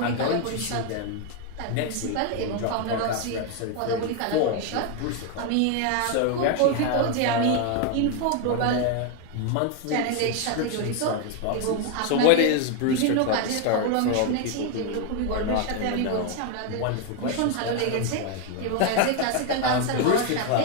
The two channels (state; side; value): different; both; correlation 0.01